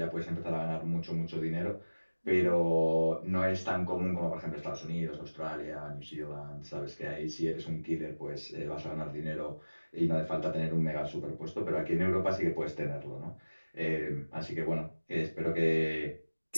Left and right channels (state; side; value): inverted; both; correlation -1.00